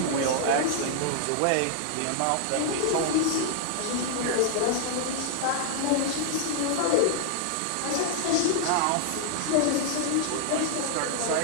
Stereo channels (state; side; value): different; both; correlation -0.01